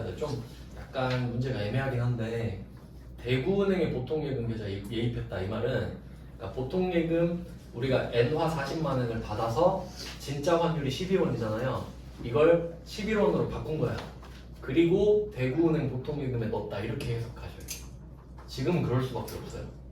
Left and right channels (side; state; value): both; identical; correlation 1.00